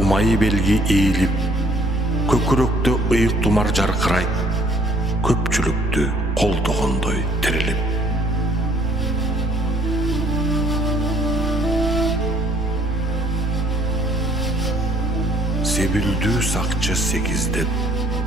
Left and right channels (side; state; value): both; normal; correlation 0.62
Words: белги ийилип, көкүрөктө ыйык тумар жаркырайт, көпчүлүктү колдогондой тирилип. Себилдүү сакчы сегиздеп,